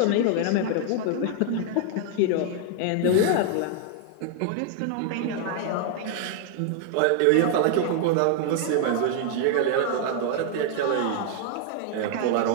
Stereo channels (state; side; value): different; both; correlation 0.00